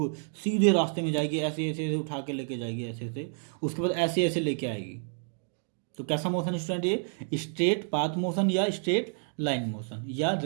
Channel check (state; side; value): silent; left; 58 dB below the other